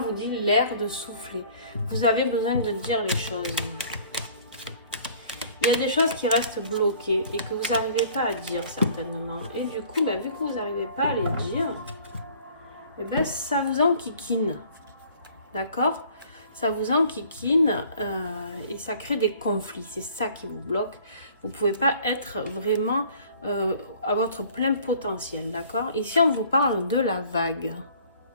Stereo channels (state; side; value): inverted; both; correlation -0.53